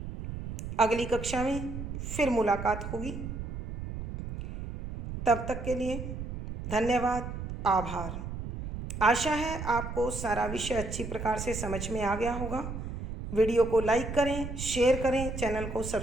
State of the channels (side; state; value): right; noise; rumble, 7 dB below the sound